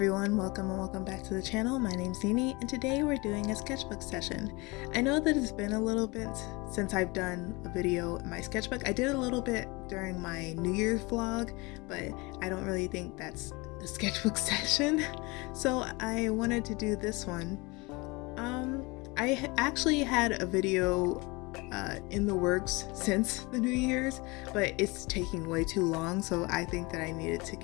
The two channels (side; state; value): right; quieter; 25.4 dB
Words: welcome and welcome back to the channel. My name's Nini and today we're doing a sketchbook session. I know that it's been a little bit since I've done a video in my sketchbook. I did a little bit during my New Year's vlog, but I don't really think that's a sketchbook session. So I wanted to do this one. I actually had a video in the works since the New Year's, but it's taking way too long, so I think that I needed to